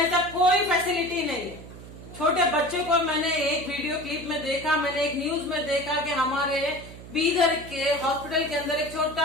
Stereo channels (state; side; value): noise; right; hum, 15 dB below the sound